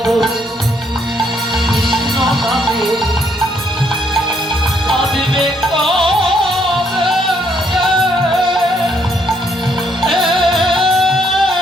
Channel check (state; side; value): normal; both; correlation 0.70